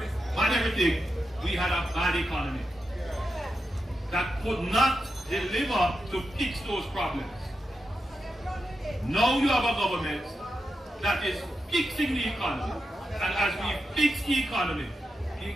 bad everything, we had a bad economy that could not deliver to fix those problems. Now you have a government that is fixing the economy. And as we fix the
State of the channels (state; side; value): normal; both; correlation 0.88